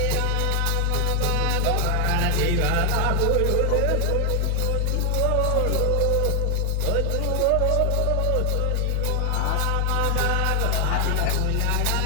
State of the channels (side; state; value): both; different; correlation 0.00